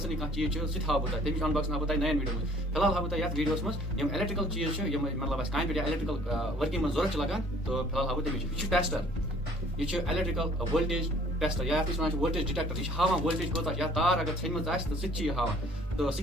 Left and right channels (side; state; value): both; normal; correlation 0.56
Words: کانٛہہ چیٖز چھُ سُہ تہِ ہاوٕ بہٕ تۄہہِ تَمِچ انباکسنگ ہاوٕ بہٕ تۄہہِ نَیَن ویٖڈیو منٛز فی الحال ہاوٕ بہٕ تۄہہِ یَتھ ویٖڈیوَس منٛز یِم الیکٹریکل چیٖز چھِ یِم مطلب اَسہِ کامہِ پٮ۪ٹھ یا الیکٹریکل ؤرکِنٛگ منٛز ضوٚرتھ چھِ لگان تہٕ فی الحال ہاوٕ بہٕ تَمِچ یہِ چھُ ٹیسٹر یہ الیکٹریکل وولٹیج ٹیسٹر یا یتھ أسۍ وولٹیج ڈِٹیکٹر یہ ہاوان وولٹیج کوتاہ یا تار اگر ژھیٚنمٕژ آسہِ تہٕ سُہ تہِ چھِ یہِ ہاوان تہٕ